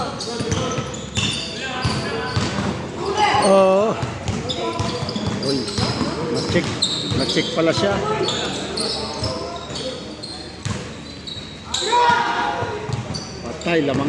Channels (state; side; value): identical; both; correlation 1.00